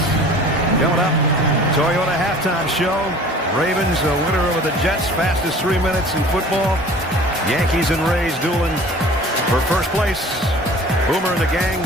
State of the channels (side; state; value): both; normal; correlation 0.46